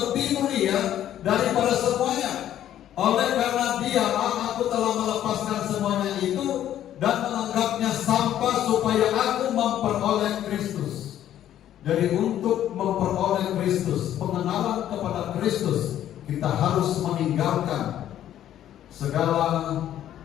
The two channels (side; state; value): right; quieter; 11.5 dB